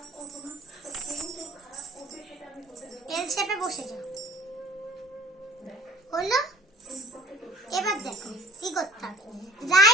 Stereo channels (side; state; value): both; normal; correlation 0.49